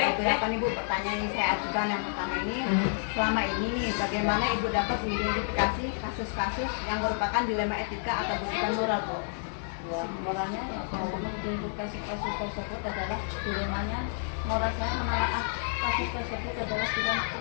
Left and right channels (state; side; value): silent; right; 58 dB below the other